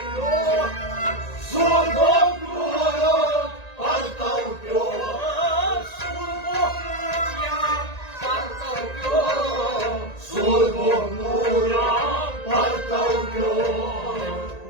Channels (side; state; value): right; late; 1.9 ms